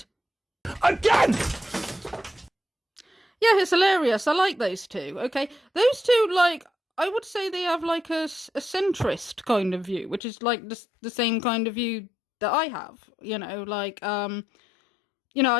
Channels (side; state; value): right; drops out; at 10.2 s